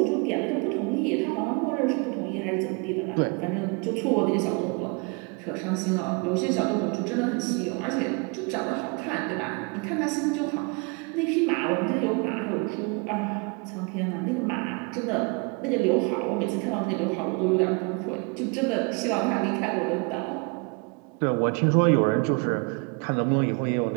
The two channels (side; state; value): left; quieter; 31.8 dB